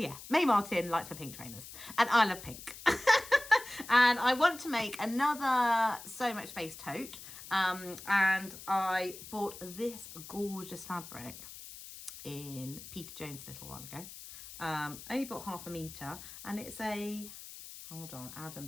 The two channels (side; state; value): left; noise; hiss, 14 dB below the sound